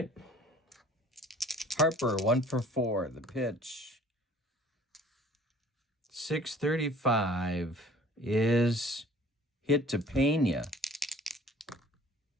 Harper, 1 for 4. The pitch. 635 is hit to Pena.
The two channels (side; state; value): both; normal; correlation 0.52